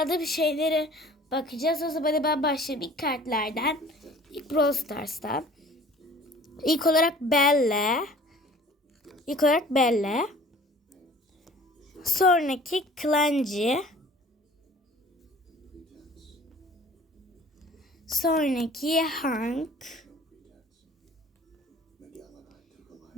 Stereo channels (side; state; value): both; normal; correlation 0.49